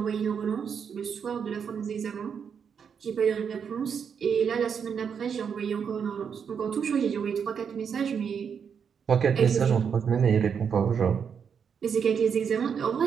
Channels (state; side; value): quieter; left; 7.0 dB